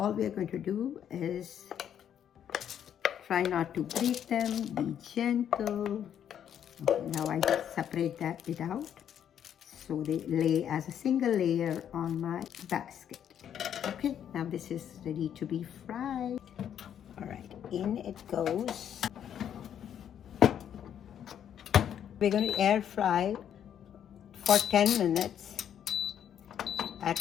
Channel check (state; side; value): quieter; right; 9.4 dB